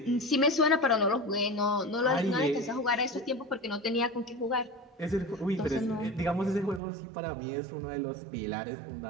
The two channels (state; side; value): drops out; left; at 6.8 s